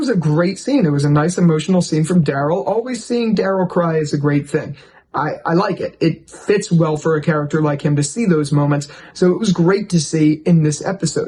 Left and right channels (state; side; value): identical; both; correlation 1.00